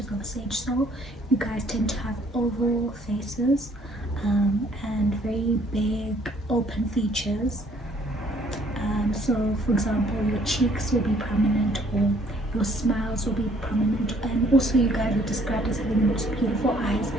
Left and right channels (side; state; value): both; normal; correlation 0.62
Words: of a sage soul? You guys tend to have oval faces, and very big open features. So, for example, your cheeks will be prominent, or your smiles will be prominent, and also you guys are described as having the most beautiful eyes,